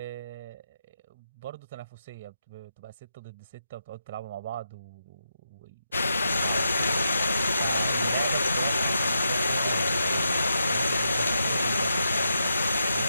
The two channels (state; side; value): inverted; both; correlation -0.82